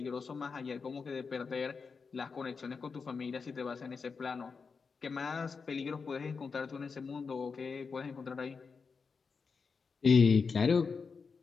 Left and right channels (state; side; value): quieter; right; 5.1 dB